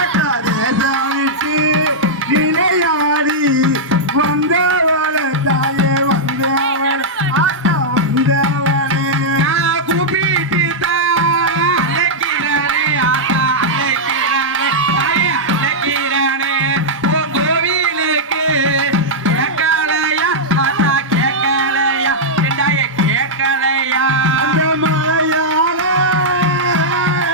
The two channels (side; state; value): both; normal; correlation -0.07